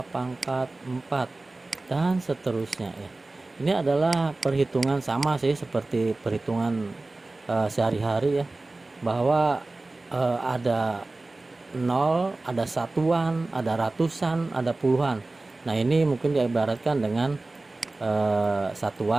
pangkat 4, dan seterusnya ya. Ini adalah perhitungan sama sih seperti perhitungan sehari-hari ya, bahwa ada 0, ada satuan, ada ratusan, ada puluhan. Nah, ini mungkin diibaratkan dengan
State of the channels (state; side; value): quieter; left; 3.1 dB